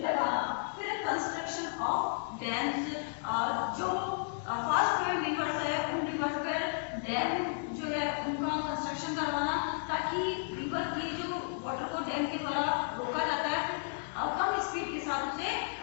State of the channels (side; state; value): right; silent; digital silence